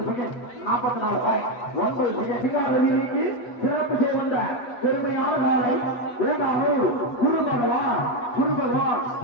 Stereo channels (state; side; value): late; right; 8.2 ms